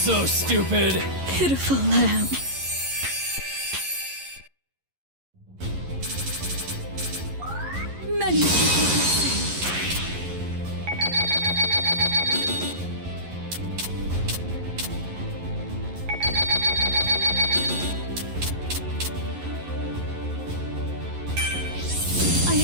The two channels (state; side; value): late; left; 11 ms